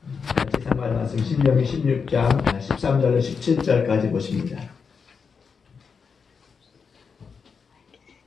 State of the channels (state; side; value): quieter; right; 5.7 dB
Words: 같이 상관 말씀 신명기 16장 13절로 17절까지 보십니다.